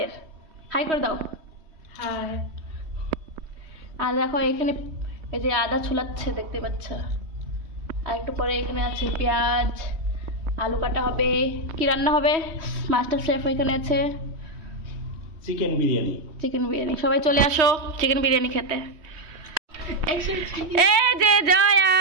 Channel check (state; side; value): late; left; 3.2 ms